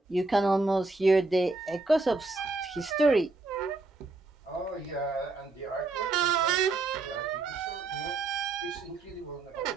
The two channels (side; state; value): left; quieter; 3.4 dB